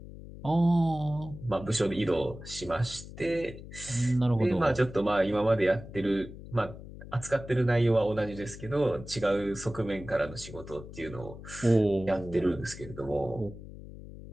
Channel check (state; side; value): noise; left; hum, 14 dB below the sound